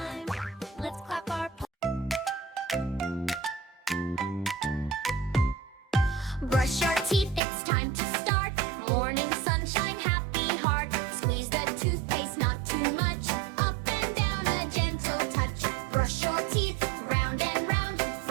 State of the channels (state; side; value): drops out; left; at 7.4 s